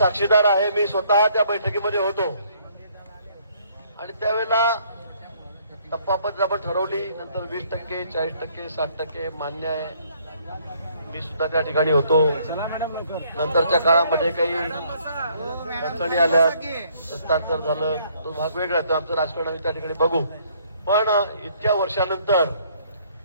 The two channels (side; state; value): both; inverted; correlation -0.64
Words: आहे. मी स्वतः त्या बैठकीमध्ये होतो आणि त्यावेळेला टप्पापद्धत आपण ठरवली. नंतर 20%, 40%, 60% मान्य आहे. मी सुद्धा त्या ठिकाणी होतो. नंतरच्या काळामध्ये काही अडचणी आल्या, हस्तांतर झालं, तो भाग वेगळा. तो आमचं राजकारण आम्ही त्या ठिकाणी बघू. पण इतक्या वर्षानंतर,